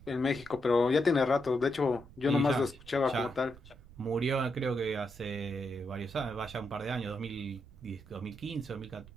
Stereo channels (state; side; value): noise; right; rumble, 20 dB below the sound